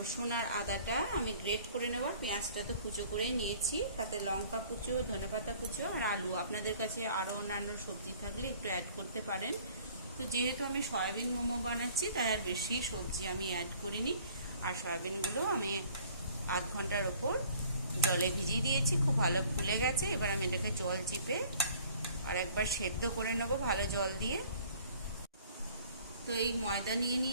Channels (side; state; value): both; inverted; correlation -0.54